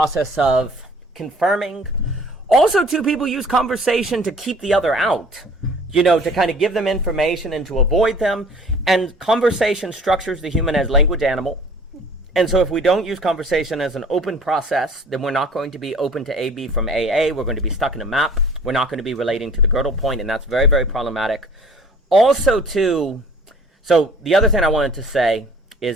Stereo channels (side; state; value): both; normal; correlation 0.50